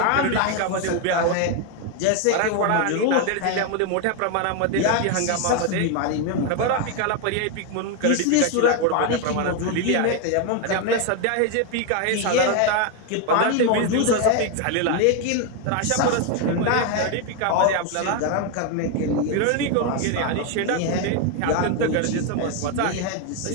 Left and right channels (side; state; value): both; different; correlation 0.01